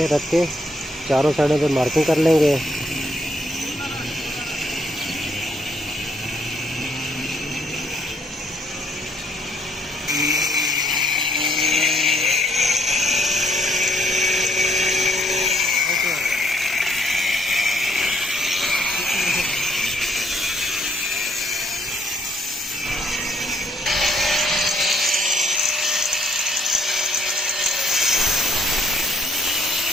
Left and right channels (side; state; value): both; normal; correlation 0.68